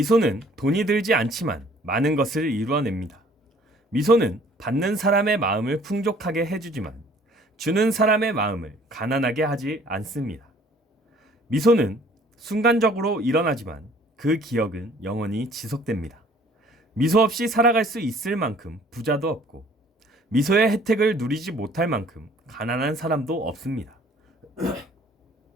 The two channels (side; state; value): both; normal; correlation 0.56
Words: 돈이 들지 않지만 많은 것을 이루어냅니다. 미소는 받는 사람의 마음을 풍족하게 해주지만 주는 사람의 마음을 가난하게 하지 않습니다. 미소는 순간적으로 일어나지만 그 기억은 영원히 지속됩니다. 미소 없이 살아갈 수 있을 만큼 부자도 없고 미소의 혜택을 누리지 못할 만큼 가난한 사람도 없습니다.